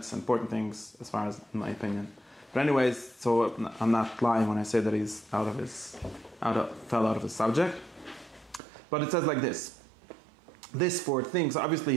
important things as far as in my opinion. But anyways, so I'm not lying when I say that he's fell out of his subject. But it says like this. This fourth thing, so obviously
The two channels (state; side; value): drops out; left; at 8.6 s